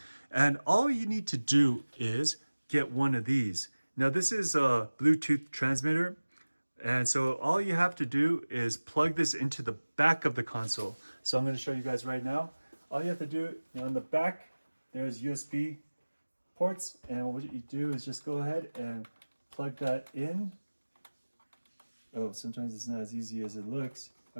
And all you need to do is get one of these. Now this is a Bluetooth transmitter. And so all you have to do is plug this into the back of the console. So I'm going to show you guys right now. All you have to do, on the back, there's USB ports. And what you do is just go ahead and plug that in. Oh, sometimes it's not as easy as it looks.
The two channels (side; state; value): both; inverted; correlation -1.00